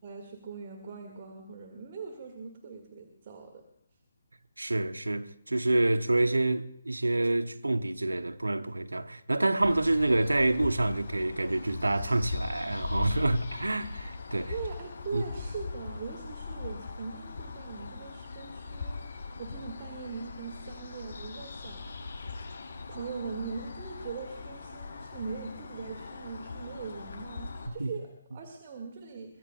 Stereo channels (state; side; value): inverted; both; correlation -0.95